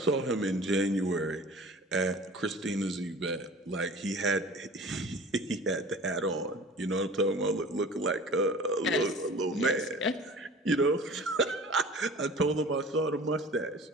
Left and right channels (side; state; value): both; normal; correlation 0.43